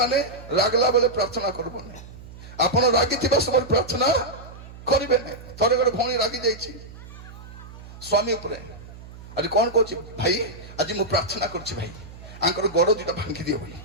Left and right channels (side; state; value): right; noise; hum, 16 dB below the sound